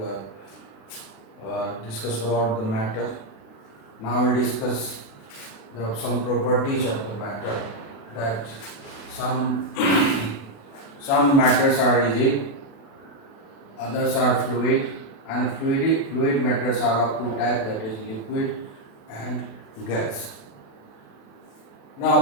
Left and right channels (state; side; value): late; right; 36 ms